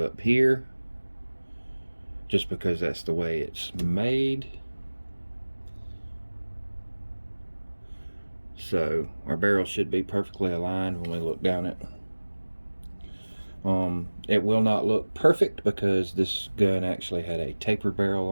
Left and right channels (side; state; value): both; inverted; correlation -1.00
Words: up here, just because that's the way it's made. So our barrel should be perfectly aligned when we look down it. It will not look perfect because this gun actually had a taper barrel